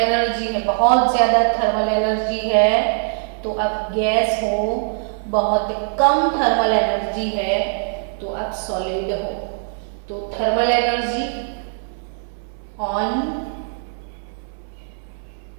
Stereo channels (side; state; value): left; silent; 62 dB below the other